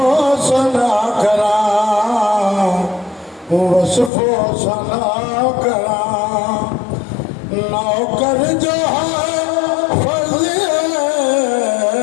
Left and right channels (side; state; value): right; drops out; at 4.1 s